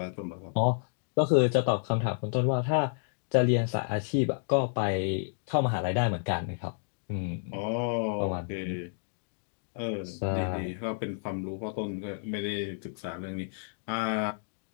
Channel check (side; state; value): right; silent; digital silence